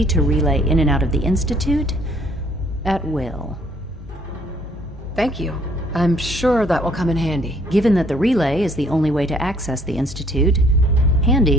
to relay in and out of the Institute at will. Thank you. I'm sure that will come in handy. Given that the relay is the only way to access the Institute,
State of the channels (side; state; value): both; normal; correlation 0.63